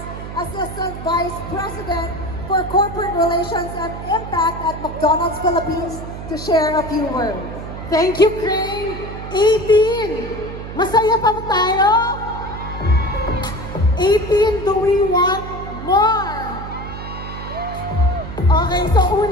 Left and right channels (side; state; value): right; noise; hum, 10 dB below the sound